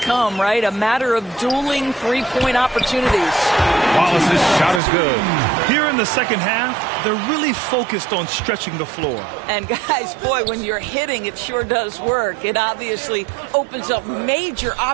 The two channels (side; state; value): left; drops out; at 4.8 s